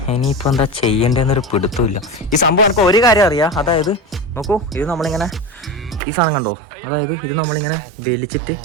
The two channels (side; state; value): left; drops out; at 6.0 s